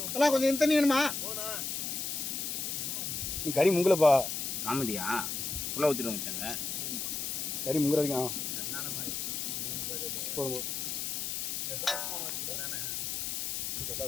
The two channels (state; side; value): noise; left; hiss, 2 dB below the sound